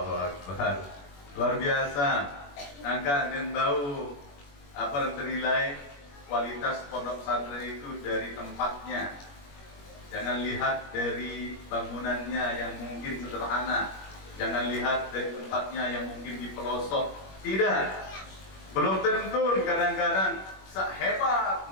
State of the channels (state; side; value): late; right; 21 ms